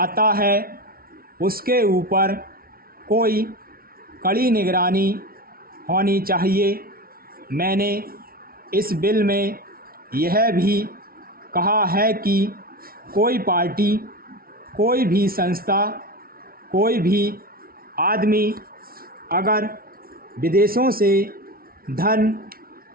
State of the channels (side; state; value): left; late; 0.43 ms